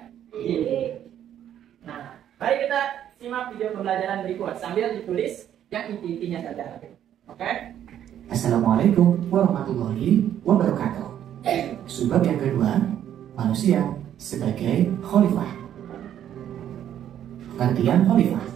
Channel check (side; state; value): left; quieter; 10.5 dB